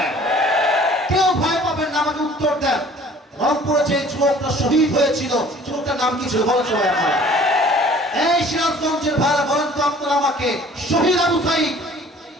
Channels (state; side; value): normal; both; correlation 0.51